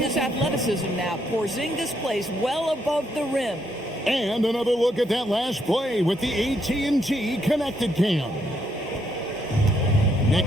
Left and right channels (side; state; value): both; normal; correlation 0.75